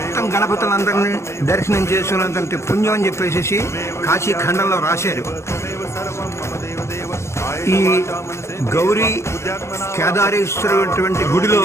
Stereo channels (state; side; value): late; right; 0.13 ms